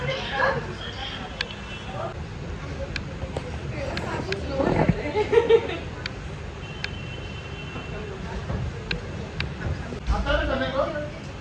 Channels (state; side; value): identical; both; correlation 1.00